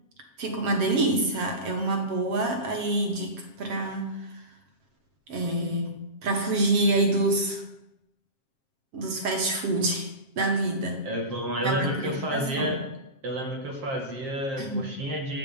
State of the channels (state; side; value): late; left; 7.5 ms